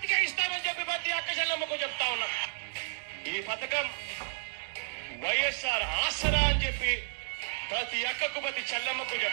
ఇస్తామని చెప్పి ప్రతి అక్క చెల్లెమ్మకు చెప్తా ఉన్నా. ఈ పథకం వైఎస్ఆర్ ఆసరా అని చెప్పి ప్రతి అక్కకు ప్రతి చెల్లెమ్మకు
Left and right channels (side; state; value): left; silent; digital silence